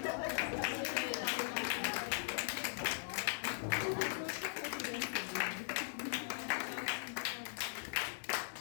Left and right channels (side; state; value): right; silent; digital silence